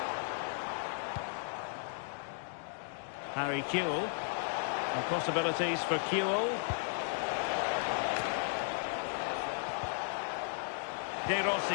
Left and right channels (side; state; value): right; silent; digital silence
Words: Harry Kewell. And possibilities for Kewell.